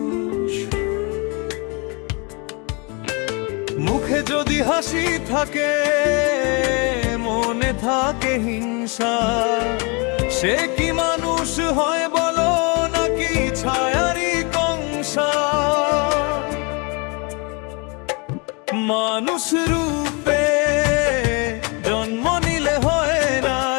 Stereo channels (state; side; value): quieter; right; 31.3 dB